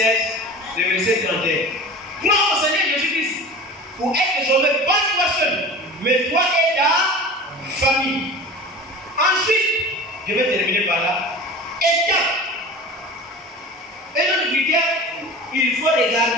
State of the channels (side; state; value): both; normal; correlation 0.36